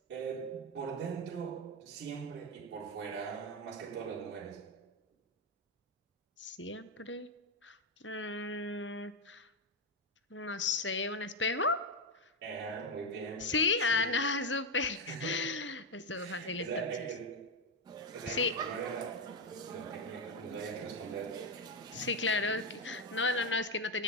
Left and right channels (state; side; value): normal; both; correlation 0.07